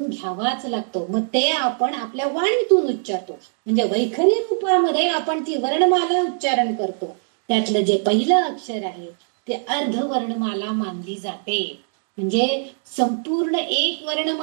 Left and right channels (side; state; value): left; silent; digital silence